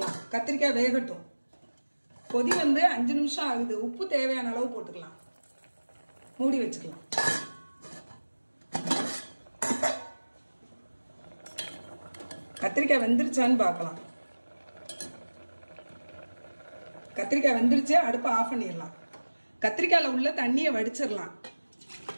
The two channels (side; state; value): both; inverted; correlation -1.00